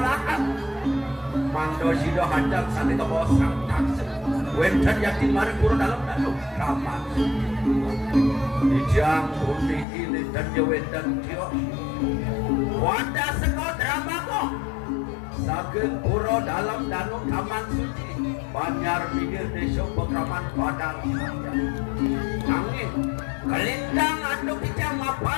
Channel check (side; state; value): right; drops out; at 9.9 s